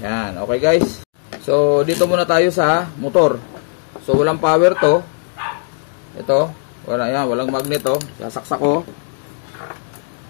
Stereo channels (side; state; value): right; silent; digital silence